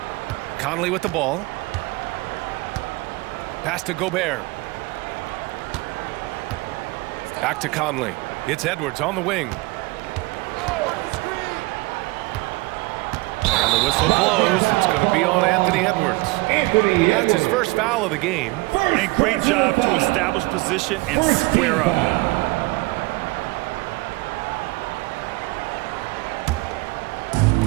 Conley with the ball. Pass to Gobert. Back to Conley. It's Edwards on the wing. And the whistle blows. It's going to be on Anthony Edwards. That's his first foul of the game. And great job to establish position and square up.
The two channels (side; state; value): left; quieter; 23.1 dB